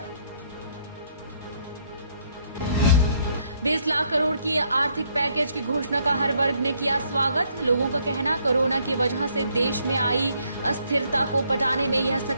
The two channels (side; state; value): both; inverted; correlation -0.69